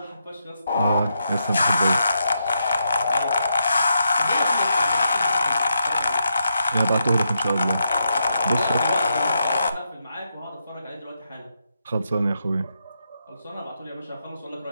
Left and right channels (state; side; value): inverted; both; correlation -0.82